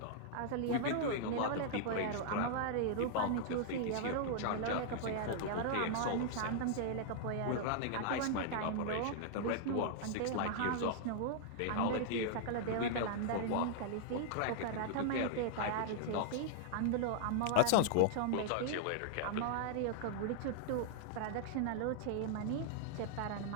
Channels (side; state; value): both; different; correlation -0.01